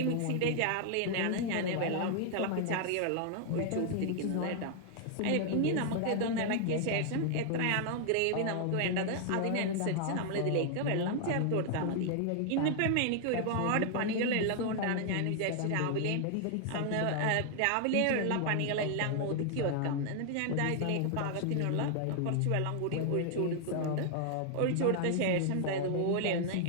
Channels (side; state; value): both; different; correlation 0.00